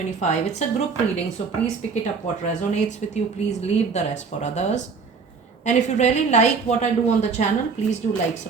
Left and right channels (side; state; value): left; quieter; 5.2 dB